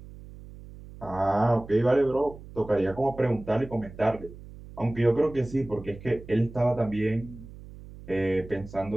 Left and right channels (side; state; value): right; noise; hum, 16 dB below the sound